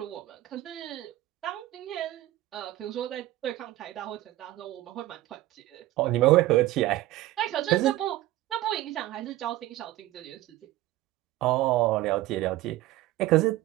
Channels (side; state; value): left; quieter; 16.1 dB